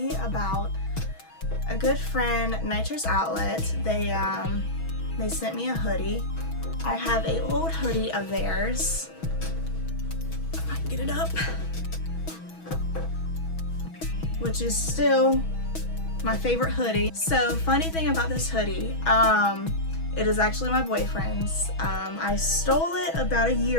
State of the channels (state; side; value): late; right; 6.2 ms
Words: about a good friend, Nitrous Outlet. They sent me a hoodie. I have an old hoodie of theirs. If I can get it up. Which is still my favorite hoodie. So funny thing about this hoodie, it is actually my boyfriend's. I stole it about a